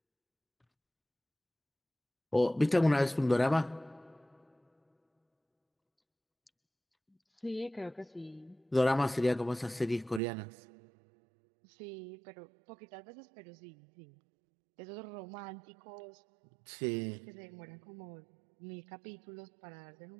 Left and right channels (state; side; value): drops out; left; at 10.2 s